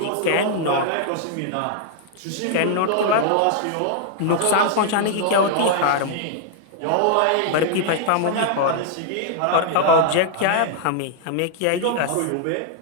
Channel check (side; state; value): both; different; correlation -0.01